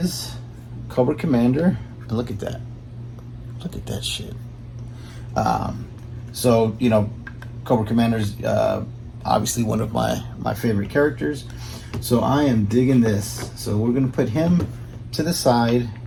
Cobra Commander. And look at that. Look at that shit. So, you know, Cobra Commander's obviously one of my favorite characters. So I am digging this. So we're going to put him to the side,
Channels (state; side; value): identical; both; correlation 1.00